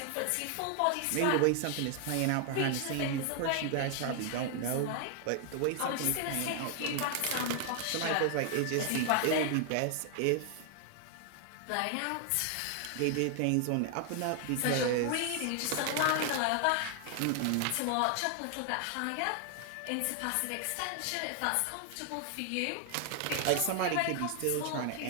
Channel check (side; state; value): both; different; correlation 0.00